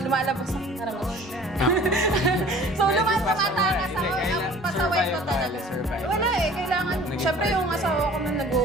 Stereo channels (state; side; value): normal; both; correlation 0.48